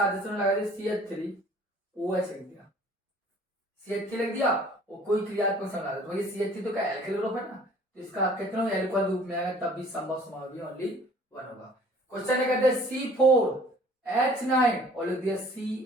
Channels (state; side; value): normal; both; correlation 0.53